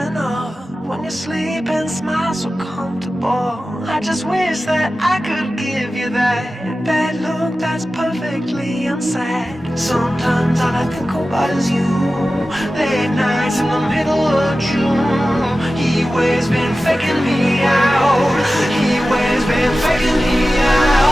of when you sleep and smile so comfortable. I just wish that I could give you that bad look that's perfectly unsaid. Sometimes all I think about is you. Late nights in the middle of June. Heat waves been faking me out. Heat waves been faking me out.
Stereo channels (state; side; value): normal; both; correlation 0.95